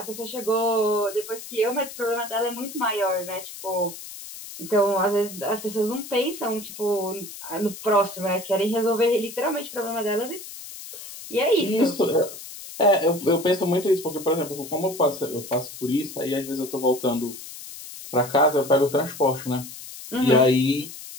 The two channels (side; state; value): left; noise; hiss, 13 dB below the sound